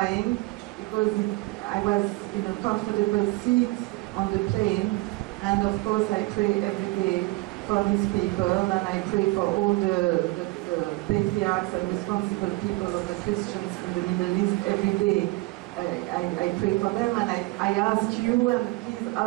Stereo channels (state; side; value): quieter; left; 22.1 dB